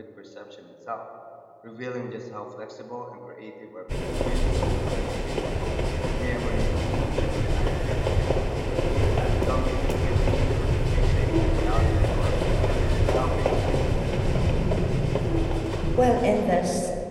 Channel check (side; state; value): both; identical; correlation 1.00